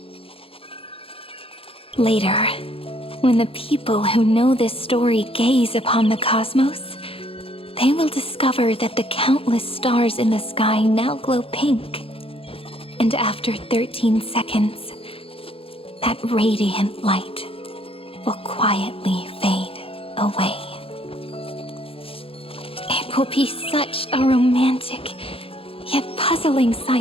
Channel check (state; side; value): late; right; 0.27 ms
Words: Later, when the people who know this story gaze upon the cosmos, they will discover that the countless stars in the sky now glow pink. And after 13 seconds, that radiant light will quietly fade away. It will be such a romantic, yet puzzling